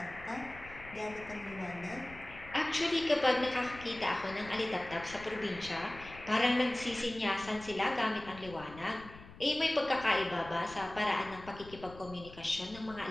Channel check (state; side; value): noise; left; rumble, 17 dB below the sound